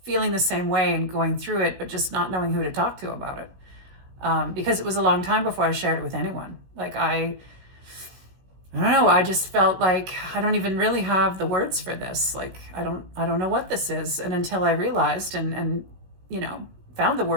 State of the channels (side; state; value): left; late; 16 ms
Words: feeling the same way and going through it, but just not knowing who to talk to about it. Because it was a long time before I shared it with anyone. Like I don't know, I just felt like I don't even really have the words for this. Like I don't know what this is. And until I realized and found the